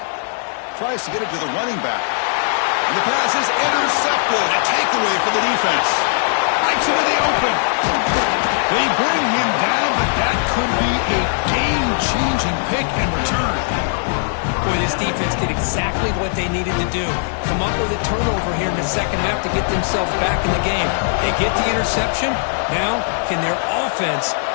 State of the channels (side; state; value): right; silent; digital silence